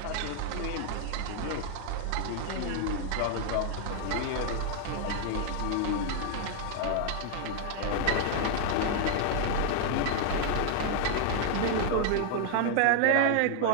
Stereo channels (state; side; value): different; both; correlation 0.00